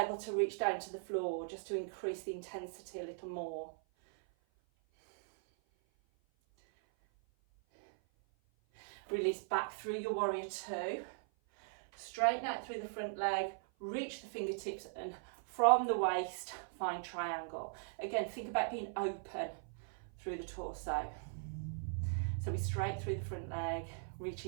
to reach down to the floor just to increase the intensity a little more. Release back through your warrior 2, straighten out through the front leg, reach the fingertips and from the waist find triangle. Again, think about being open through the torso. So we straight through the front leg,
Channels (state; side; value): silent; left; 52 dB below the other